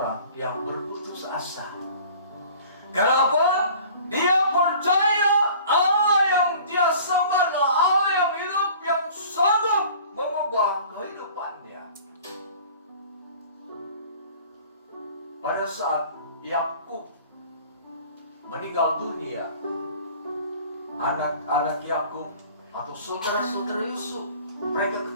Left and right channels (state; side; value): inverted; both; correlation -0.47